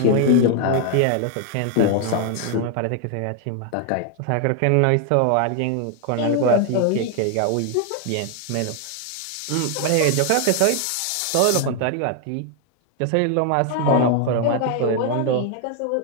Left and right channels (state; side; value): different; both; correlation 0.00